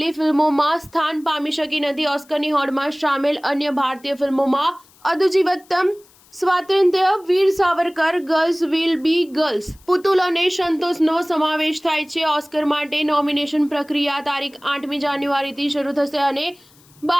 ફિલ્મોમાં સ્થાન પામી શકી નથી. ઓસ્કરની હોડમાં સામેલ અન્ય ભારતીય ફિલ્મોમાં Aadujeevitham, Swatantrya Veer Savarkar, girls will be girls, Putul અને સંતોષનો સમાવેશ થાય છે. ઓસ્કર માટે નોમિનેશન પ્રક્રિયા તારીખ 8મી જાન્યુઆરીથી શરૂ થશે અને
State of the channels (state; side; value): noise; left; hiss, 29 dB below the sound